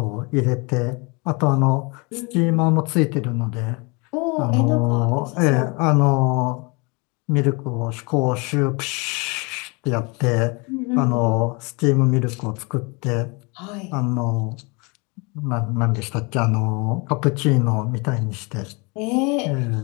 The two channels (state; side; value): quieter; right; 29.5 dB